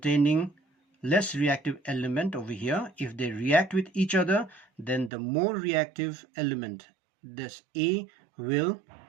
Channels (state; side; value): drops out; left; at 5.1 s